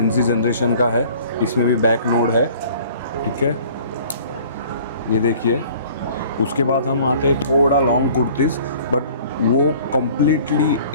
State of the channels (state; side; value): inverted; both; correlation -0.51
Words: जनरेशन का है. इसमें भी बैक नोड है. ठीक है, ये देखिए. उसके बाद हम आते हैं थोड़ा लॉन्ग कुर्तीज़, बट वो कम्प्लीटली